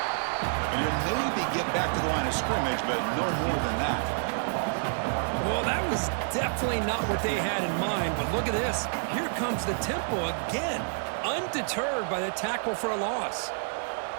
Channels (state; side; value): silent; left; digital silence